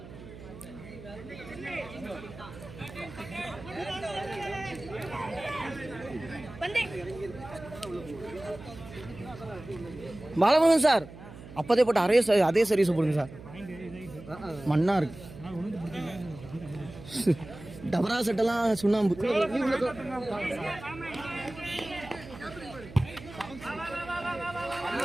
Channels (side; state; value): right; noise; hum, 15 dB below the sound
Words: பாலமுருகன் சார் அப்போதே போட்டு அதே சர்வீஸ் போடுங்க சார். மண்ணா இருக்கு. டபரா செட்டெல்லாம் சுண்ணாம்பு.